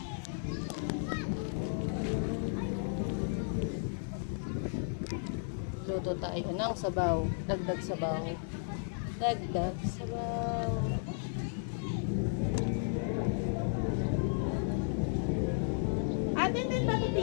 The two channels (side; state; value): right; silent; 55 dB below the other